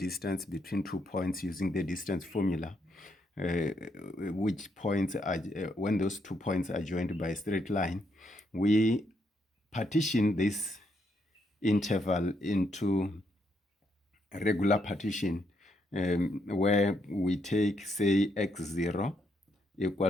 between 2 points using the distance formula, which points are, when those 2 points are joined by a straight line, we partition this interval into a regular partition, where we take, say, x0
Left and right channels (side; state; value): both; normal; correlation 0.76